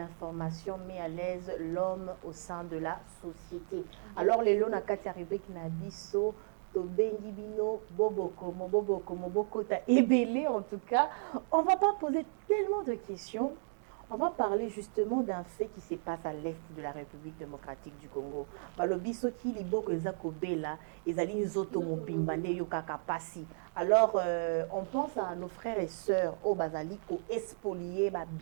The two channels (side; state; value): left; silent; digital silence